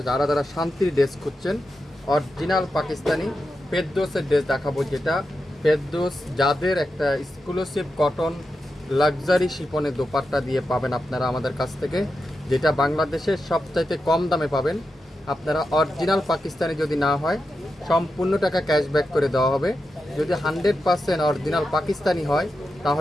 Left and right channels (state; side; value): normal; both; correlation 0.89